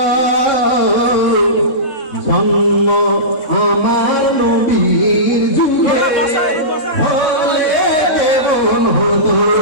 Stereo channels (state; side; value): late; right; 3.7 ms